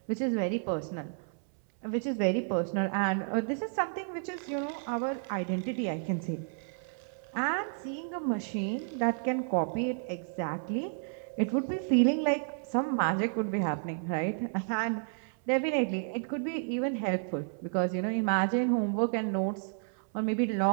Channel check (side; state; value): left; silent; 57 dB below the other